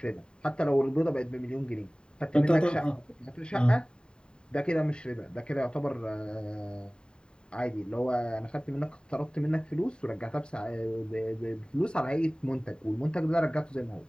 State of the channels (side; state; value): right; late; 0.049 ms